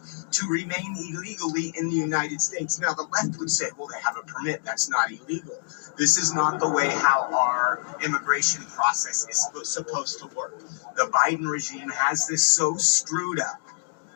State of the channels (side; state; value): right; silent; digital silence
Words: to remain illegally in the United States. Now, the left would say, well, they have a permit. That's not illegal. This is not the way how our immigration process is supposed to work. The Biden regime has this so screwed up.